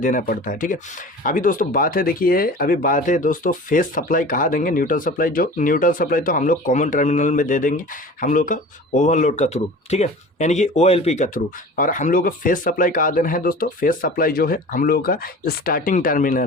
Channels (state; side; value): normal; both; correlation 0.39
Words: पड़ता है, ठीक है। अभी दोस्तों बात है दोस्तों फेस सप्लाई कहाँ देंगे, न्यूट्रल सप्लाई तो हम लोग कॉमन टर्मिनल में दे देंगे हम लोग का ओवरलोड का थ्रू, ठीक है। यानी कि OLP के थ्रू। और हम लोग को फेस सप्लाई कहाँ देना है दोस्तों, फेस सप्लाई जो है हम लोगों का स्टार्टिंग